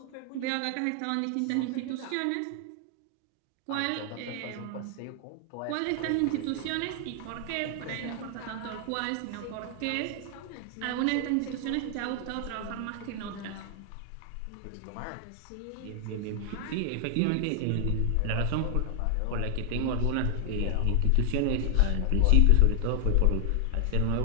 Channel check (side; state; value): both; different; correlation 0.00